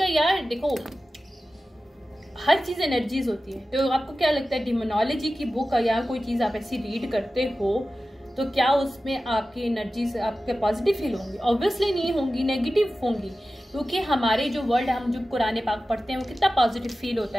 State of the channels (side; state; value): both; normal; correlation 0.95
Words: यार देखो हर चीज़ एनर्जीज होती है, तो आपको क्या लगता है डिमोनोलॉजी की बुक या कोई चीज़ आप ऐसी रीड करते हो तो क्या उसमें आपकी एनर्जीज आपके पॉजिटिव फील होंगी? ऑब्वियसली नहीं होंगी, नेगेटिव होंगी, क्योंकि हमारे जो वर्ड हम जो कुरान पाक पढ़ते हैं वो कितना पॉजिटिव फील होता